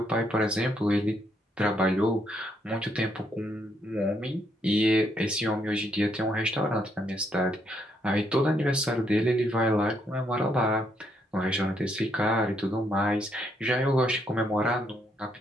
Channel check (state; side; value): normal; both; correlation 0.74